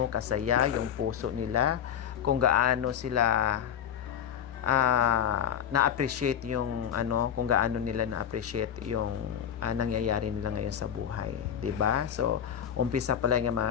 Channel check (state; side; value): quieter; right; 9.1 dB